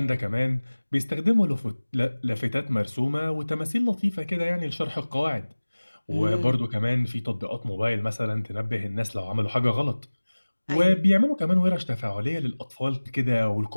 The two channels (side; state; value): both; inverted; correlation -1.00